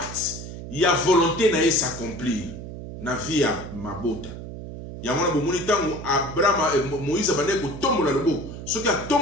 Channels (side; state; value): right; noise; hum, 10 dB below the sound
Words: il y a volonté na s'accomplir. Na vie à mabota. Yamona bomoni tango Abraham Moïse bande ko tombola loboko. Soki a